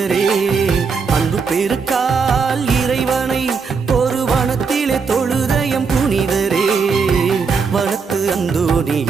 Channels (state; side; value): quieter; left; 5.3 dB